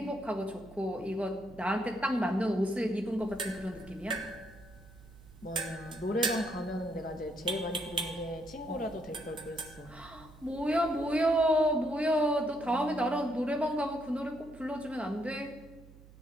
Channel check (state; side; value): noise; right; hum, 21 dB below the sound